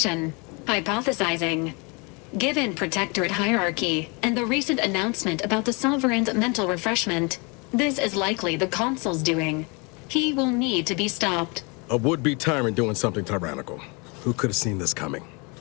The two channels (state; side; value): quieter; right; 30.4 dB